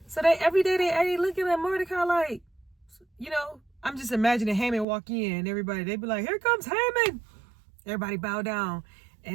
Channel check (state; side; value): drops out; left; at 4.9 s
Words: So every day they looking at Mordecai like, I'm just imagining Haman walk in, everybody, they be like, here comes Haman. Everybody bow down.